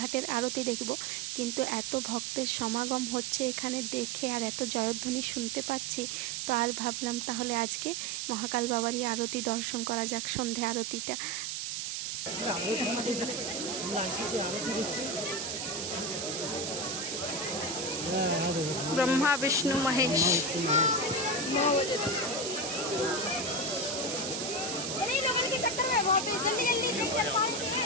আরতি দেখব, কিন্তু এত ভক্তের সমাগম হচ্ছে এখানে দেখে, আর এত জয়ধ্বনি শুনতে পাচ্ছি, তো আর ভাবলাম তাহলে আজকে মহাকাল বাবারই আরতি দর্শন করা যাক, সন্ধে আরতিটা। ब्रह्मा विष्णु महेश।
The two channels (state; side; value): noise; right; hiss, 3 dB below the sound